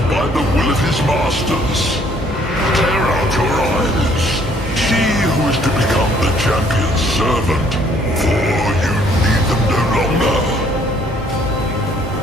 by the will of his masters. Tear out your eyes. See who is to become the champion's servant, for you need them no longer.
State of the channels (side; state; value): both; normal; correlation 0.62